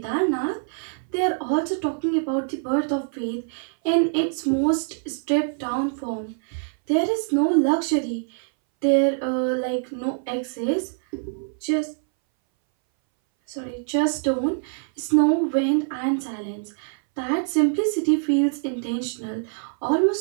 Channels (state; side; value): silent; left; 61 dB below the other